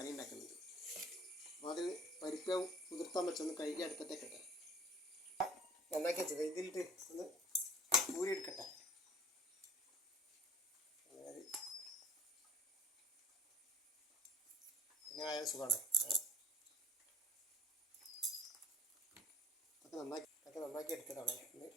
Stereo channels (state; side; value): normal; both; correlation 0.46